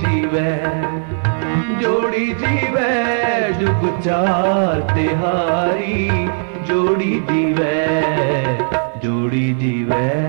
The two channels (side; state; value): left; silent; 62 dB below the other